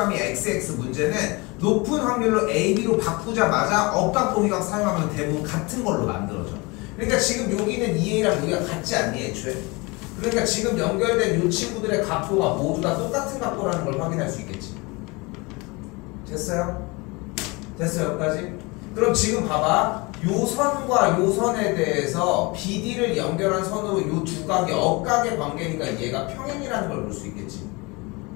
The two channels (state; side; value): quieter; right; 26.3 dB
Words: XX 문제는 높은 확률로 A, B로 바꾸자마자 억각동의각 사용하면 대부분 같은 걸로 만들어져. 그러니까 지금 여기는 2A랑 여기가 같지 않니 애초에? 그러니까 지금 연결된 이 친구들의 각도가 모두 다 똑같은 각도라는 걸 확인할 수 있겠지. 됐어요? 됐어요 여기까지? 그럼 지금 봐봐. 요 선과 요 선에 대해서 BD를 연결한 선으로 요 두 각이 억각의 관계니까 얘가 평행이라는 걸 볼 수 있겠지.